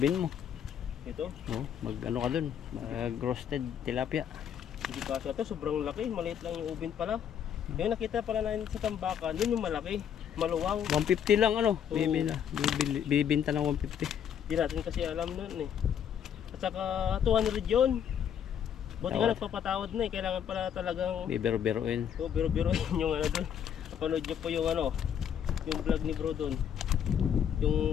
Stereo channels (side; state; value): right; quieter; 8.7 dB